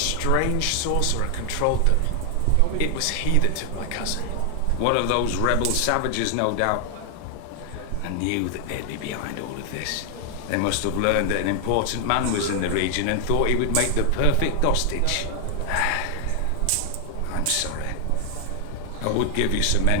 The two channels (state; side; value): different; both; correlation 0.00